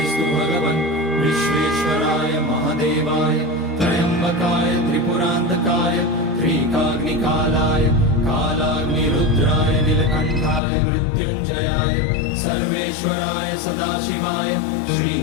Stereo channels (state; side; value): drops out; right; at 10.6 s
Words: भगवन् विश्वेश्वराय महादेवाय त्र्यम्बकाय त्रिपुरान्तकाय त्रिकाग्निकालाय कालाग्निरुद्राय नीलकण्ठाय मृत्युञ्जयाय सर्वेश्वराय सदाशिवाय